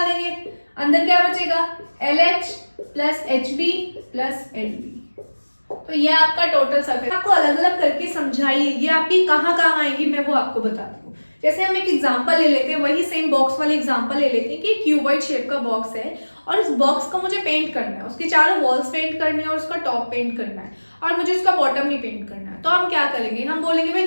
देंगे, अंदर क्या बचेगा, LH plus HB plus LB। तो ये आपका टोटल सरफेस। आपको अलग अलग करके समझाइए, ये आपकी कहाँ कहाँ आएंगी मैं वो आपको बताती हूँ। जैसे हम एक एग्जांपल ले लेते हैं, वही सेम बॉक्स वाले एग्जांपल ले लेते हैं कि क्यूबॉइड शेप का बॉक्स है और इस बॉक्स को मुझे पेंट करना है, उसके चारों वॉल्स पेंट करनी है और उसका टॉप पेंट करना है और मुझे उसका बॉटम नहीं पेंट करना है। तो हम क्या करेंगे, हम बोलेंगे भाई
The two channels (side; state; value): both; inverted; correlation -1.00